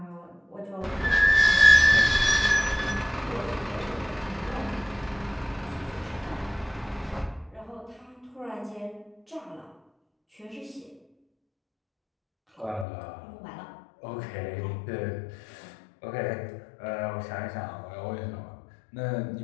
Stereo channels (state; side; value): drops out; right; at 12.9 s